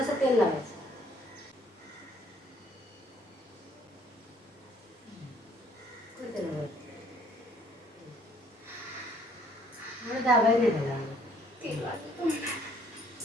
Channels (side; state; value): both; normal; correlation 0.62